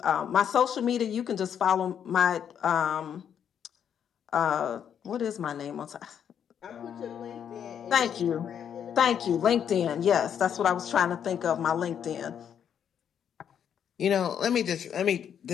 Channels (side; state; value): right; quieter; 8.6 dB